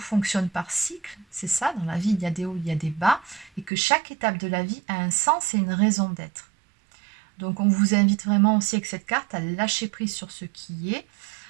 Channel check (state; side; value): drops out; left; at 3.7 s